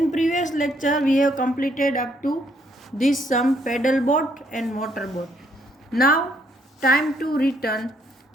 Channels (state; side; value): normal; both; correlation 0.70